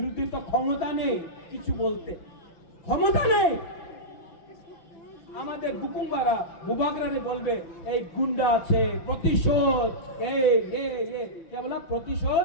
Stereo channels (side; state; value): right; late; 5.9 ms